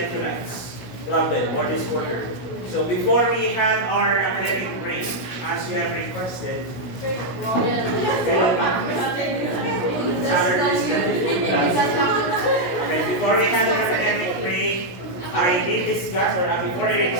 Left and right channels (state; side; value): late; right; 16 ms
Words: problem or disorder. So before we had our academic break, as you have requested, okay, before we had our academic break, I did discuss, or before your